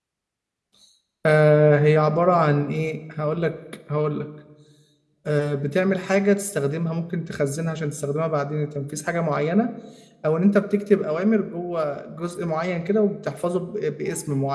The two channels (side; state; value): both; identical; correlation 1.00